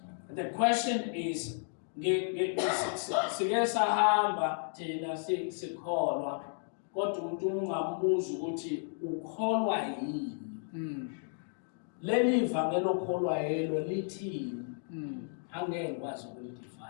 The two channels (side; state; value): right; silent; digital silence